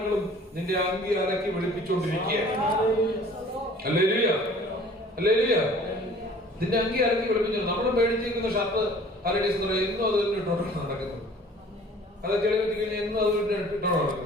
നിന്റെ അങ്കി അലക്കി വെളുപ്പിച്ചുകൊണ്ടിരിക്കുകയാണ്. Hallelujah, hallelujah. നിന്റെ അങ്കി അലക്കി വെളുപ്പിച്ചു. നമ്മൾ മേടിച്ചിരിക്കുന്ന ഷർട്ട് ഹല്ലേലൂയ സ്തോത്രം എന്നും അത് ഇട്ടോണ്ടാണ് നടക്കുന്നത്. അതൊക്കെ എഴുതി കഴിഞ്ഞാൽ എന്നും അത് ഇട്ടോണ്ടാണ്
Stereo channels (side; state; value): both; normal; correlation 0.50